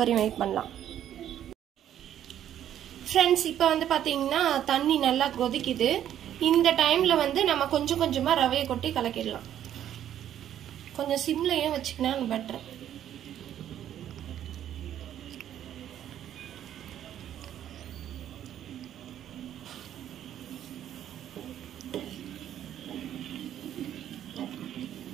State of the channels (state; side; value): quieter; left; 10.8 dB